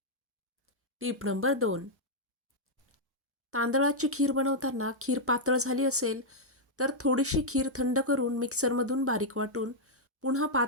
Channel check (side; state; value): both; normal; correlation -0.04